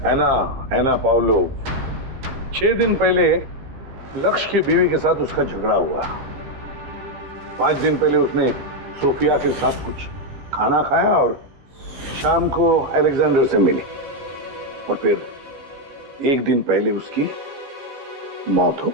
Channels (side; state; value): left; late; 15 ms